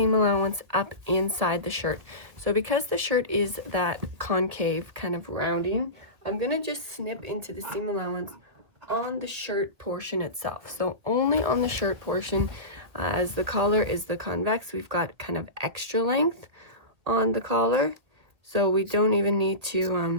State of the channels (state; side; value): late; left; 2.0 ms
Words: allowance up inside the shirt. So because the shirt is that concave kind of rounding, I'm going to just snip into the seam allowance on the shirt portion itself. So only on the shirt portion. As the collar is the convex, we've got kind of extra length on the collar, so we don't even need